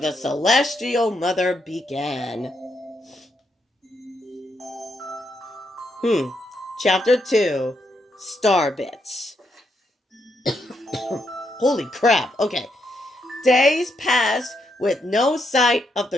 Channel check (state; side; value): normal; both; correlation 0.79